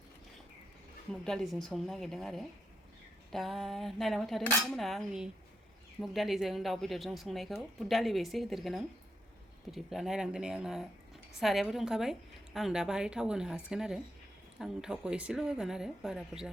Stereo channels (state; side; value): normal; both; correlation 0.82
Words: मुग दालिजों संनो नागिरदों आरो दा नायलांबाय थादो नोंथांमोना आंनि मुग दालिजों दाउ बेदरजों संनायखौ बुट दालिबो एसे होदेरगोन आं बिदिब्ला नायलांदो नै आंना सारायाबो दुंखाबाय आं दा बाहाय थाव होनो हासिगोन आरो आं थावखौ एसेल' होगोन आरो बारा बुरजा